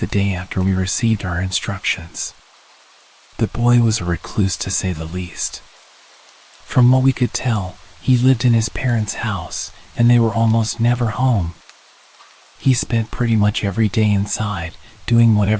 day after we received our instructions. The boy was a recluse to say the least. From what we could tell, he lived in his parents' house, and they were almost never home. He spent pretty much every day inside, doing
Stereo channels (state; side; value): identical; both; correlation 1.00